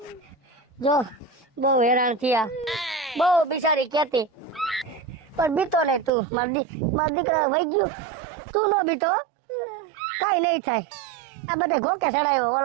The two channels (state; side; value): drops out; left; at 6.1 s